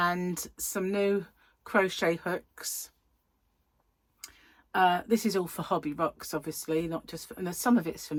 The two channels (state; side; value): identical; both; correlation 1.00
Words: some new crochet hooks. This is all for Hobby Rocks, obviously, not just for, and some of it's for